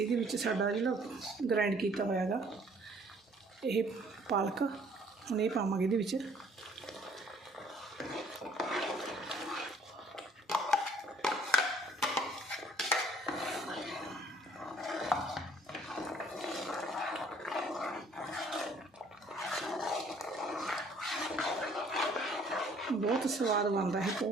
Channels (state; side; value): normal; both; correlation 0.59